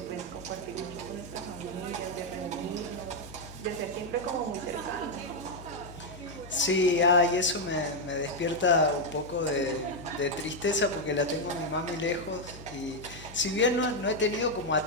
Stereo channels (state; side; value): normal; both; correlation 0.01